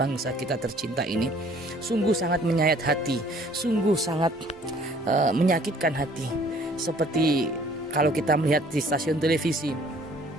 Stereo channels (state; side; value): normal; both; correlation 0.57